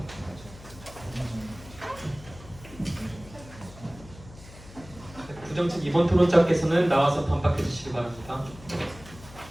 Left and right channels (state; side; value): noise; left; hum, 18 dB below the sound